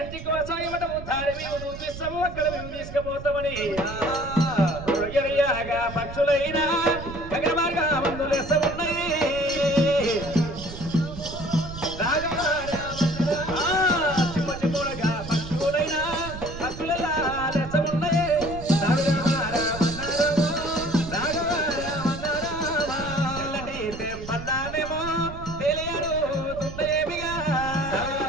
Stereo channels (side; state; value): right; noise; rumble, 11 dB below the sound